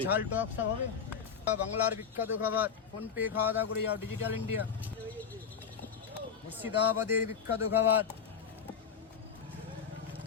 ঝাল টক সব হবে। বাংলার বিখ্যাত খাবার, ফোনপে খাওয়া দাওয়া করে যাও, ডিজিটাল ইন্ডিয়া। মুর্শিদাবাদের বিখ্যাত খাবার,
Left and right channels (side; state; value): right; quieter; 6.7 dB